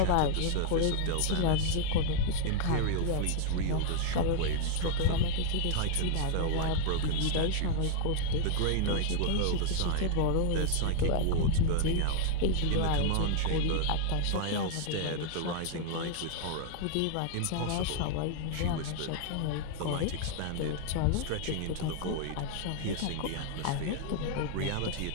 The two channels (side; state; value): both; different; correlation 0.00